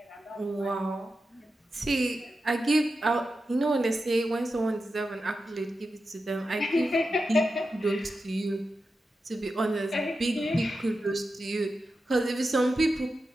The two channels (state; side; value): normal; both; correlation 0.90